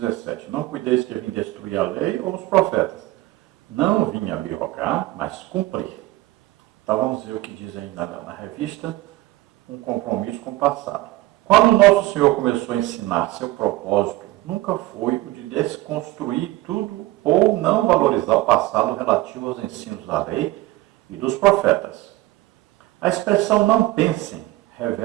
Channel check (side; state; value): left; quieter; 18.1 dB